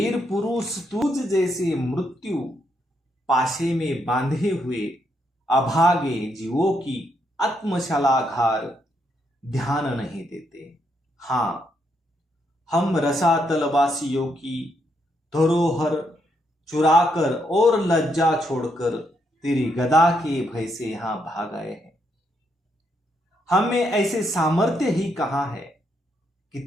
पुरुष तुझ जैसे मृत्यु पाशे में बांधे हुए अभागे जीवों की आत्मशलाघार ध्यान नहीं देते। हां, हम रसातलवासियों की धरोहर चुराकर और लज्जा छोड़कर तेरी गदा के भय से यहां भाग आए हैं। हमें ऐसे सामर्थ्य ही कहां है कि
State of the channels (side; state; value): both; normal; correlation 0.77